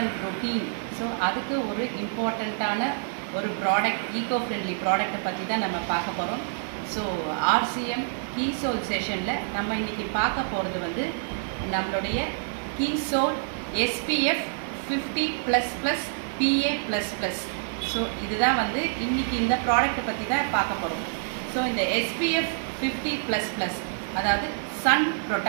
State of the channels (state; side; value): silent; left; digital silence